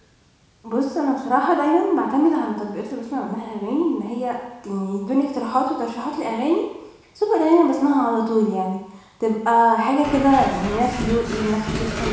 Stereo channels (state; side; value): identical; both; correlation 1.00